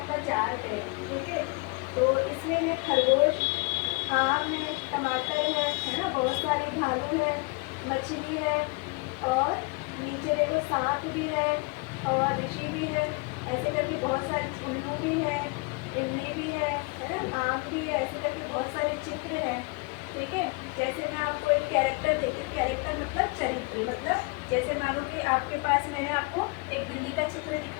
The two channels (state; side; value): quieter; right; 29.4 dB